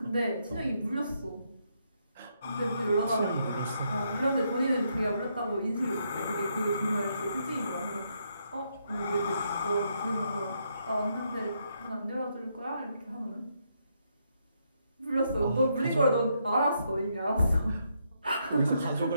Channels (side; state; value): both; inverted; correlation -0.77